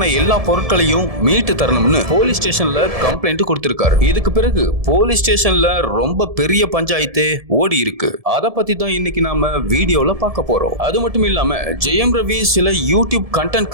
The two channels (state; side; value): late; left; 1.7 ms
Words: எல்லா பொருட்களையும் மீட்டு தரணும்னு போலீஸ் ஸ்டேஷன்ல கம்ப்ளைண்ட் கொடுத்திருக்காரு. இதுக்கு பிறகு போலீஸ் ஸ்டேஷன்ல ரொம்ப பெரிய பஞ்சாயத்தே ஓடி இருக்கு. அத பத்தி தான் இன்னைக்கு நாம வீடியோல பார்க்க போறோம். அது மட்டும் இல்லாம ஜெயம் ரவி சில யூடியூப் கண்டென்ட்